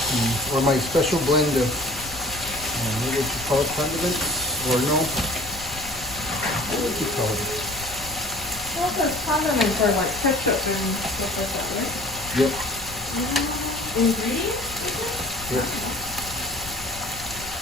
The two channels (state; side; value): noise; left; rumble, 16 dB below the sound